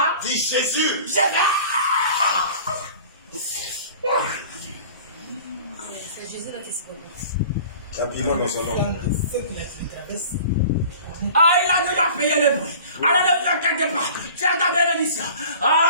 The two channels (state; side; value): inverted; both; correlation -0.44